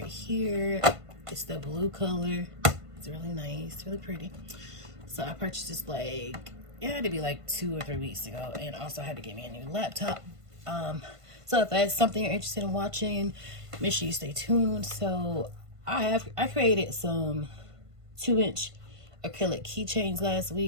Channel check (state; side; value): late; left; 1.5 ms